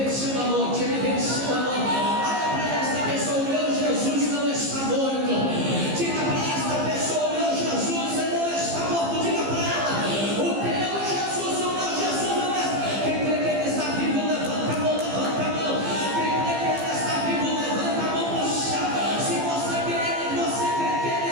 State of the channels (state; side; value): late; left; 15 ms